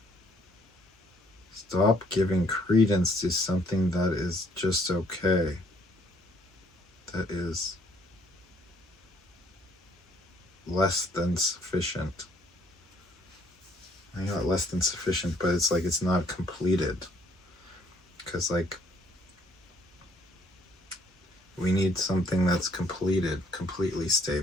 stop giving credence to something that is just okay, that is less than sufficient. I got less than sufficient, but it's like it's not completed. Because, like, we need something that's completed, completely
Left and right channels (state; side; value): normal; both; correlation 0.63